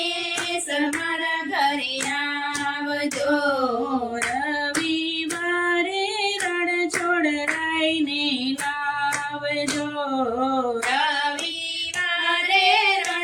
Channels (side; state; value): both; identical; correlation 1.00